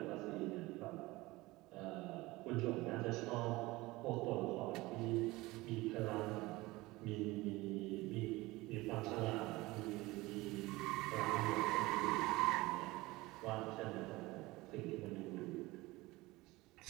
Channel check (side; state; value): left; quieter; 20.6 dB